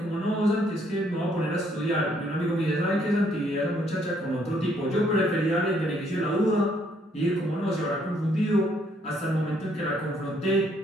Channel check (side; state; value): both; normal; correlation 0.68